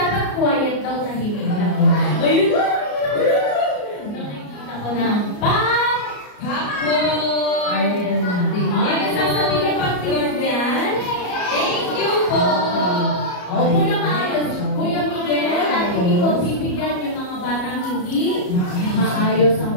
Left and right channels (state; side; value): late; right; 34 ms